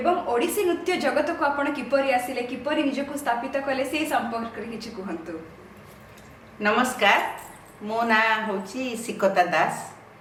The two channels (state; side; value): identical; both; correlation 1.00